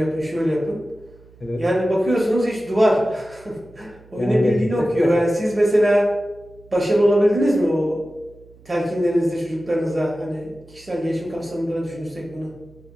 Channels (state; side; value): noise; right; hum, 25 dB below the sound